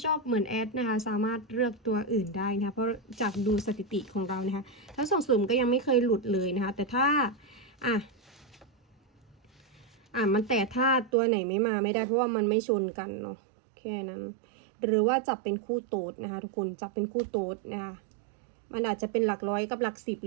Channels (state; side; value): drops out; left; at 11.1 s